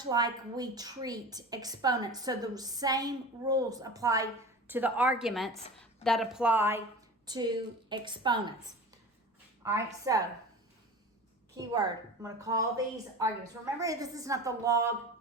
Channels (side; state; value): both; normal; correlation 0.34